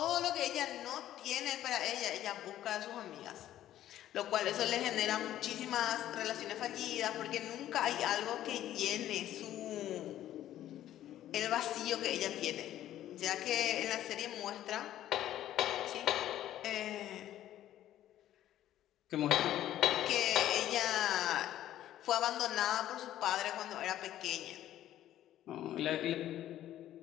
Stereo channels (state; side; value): quieter; right; 12.6 dB